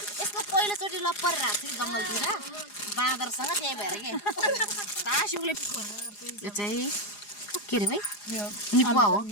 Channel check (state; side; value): late; right; 4.9 ms